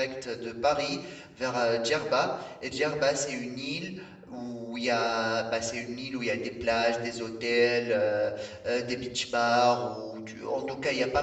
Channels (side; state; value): both; identical; correlation 1.00